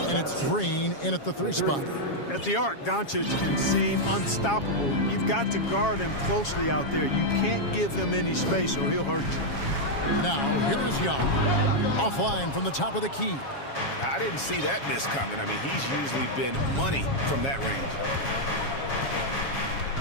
and it's Green in at the 3 spot. At the arc, Doncic can seem unstoppable. You've got to guard him closely out there. You can't give him any space or he'll hurt you. Now, here is Young. Offline from the top of the key. I didn't see that miss coming. I mean, he's usually been money from that range.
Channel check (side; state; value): right; late; 7.3 ms